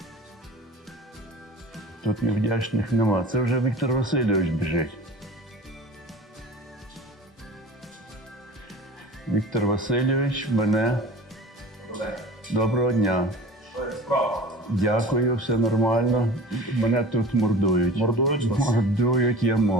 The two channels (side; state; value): both; normal; correlation 0.39